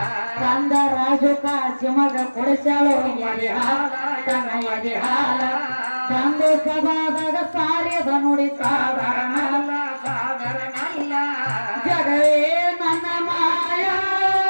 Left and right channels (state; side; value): inverted; both; correlation -1.00